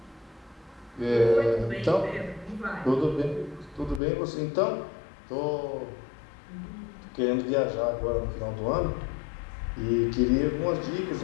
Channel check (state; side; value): drops out; right; at 4.0 s